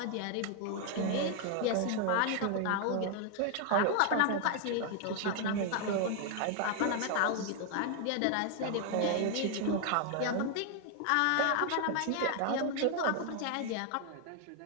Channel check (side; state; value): both; different; correlation 0.00